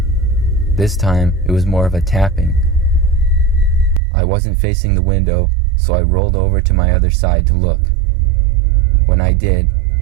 This time, it was more of a tapping. I wasn't facing the window, so I rolled over to my other side to look. When I did,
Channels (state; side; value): drops out; left; at 4.0 s